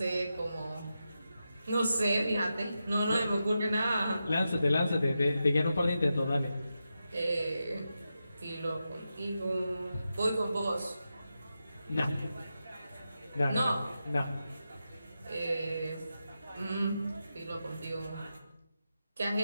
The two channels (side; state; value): both; inverted; correlation -0.89